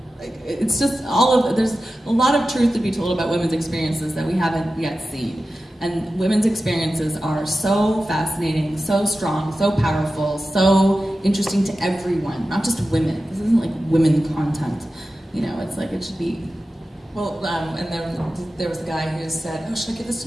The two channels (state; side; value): normal; both; correlation 0.93